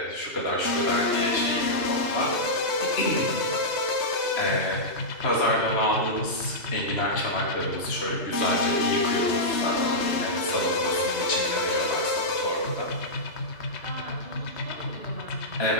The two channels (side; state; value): right; late; 3.1 ms